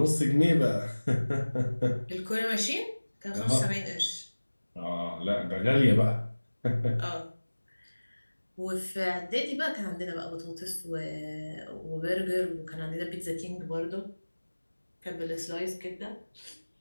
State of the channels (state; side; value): inverted; both; correlation -1.00